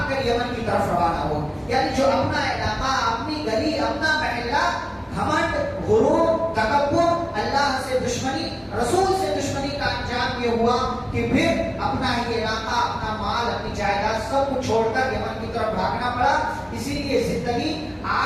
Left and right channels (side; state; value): both; identical; correlation 1.00